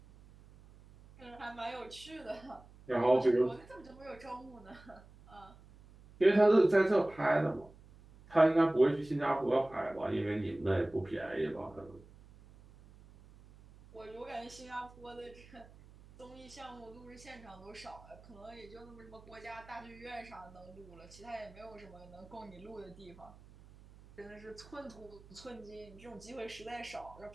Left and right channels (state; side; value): noise; right; hum, 22 dB below the sound